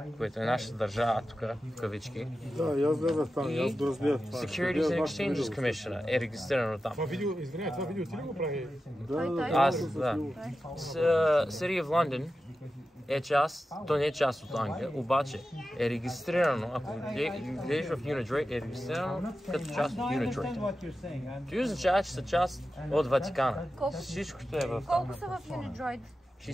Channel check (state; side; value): normal; both; correlation 0.92